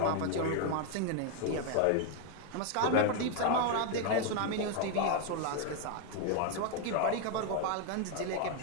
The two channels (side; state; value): both; different; correlation 0.01